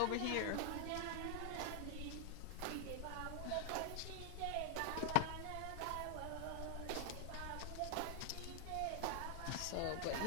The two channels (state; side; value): different; both; correlation 0.00